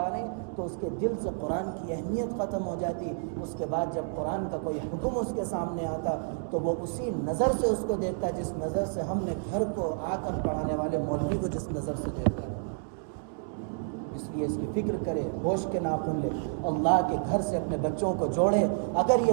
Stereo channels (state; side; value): silent; left; digital silence